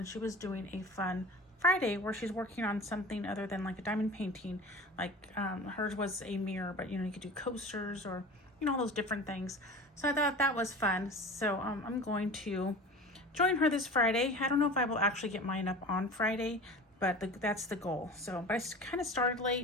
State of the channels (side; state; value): both; normal; correlation 0.36